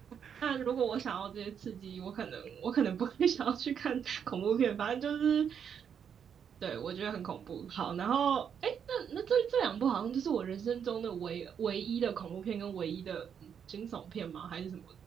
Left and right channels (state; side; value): quieter; left; 7.8 dB